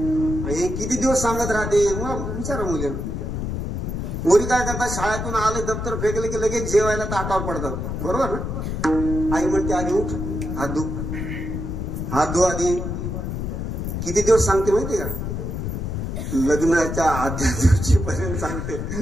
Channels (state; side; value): noise; left; rumble, 3 dB below the sound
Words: आणि किती दिवस सांगत राहते. मग विचारा मुलीला. पोरी काय करतात, शाळेतून आले दप्तर फेकले की लगेच जेवायला ताटावर पडतात. बरोबर ना. आई म्हणते आधी उठ, हात धु आधी. किती दिवस सांगते माहिती का. लग्नाच्या आदल्या दिवशी पर्यंत सांगते.